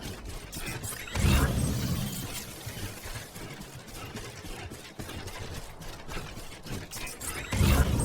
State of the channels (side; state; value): both; identical; correlation 1.00